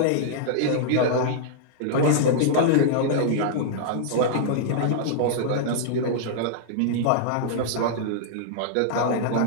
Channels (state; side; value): different; both; correlation -0.02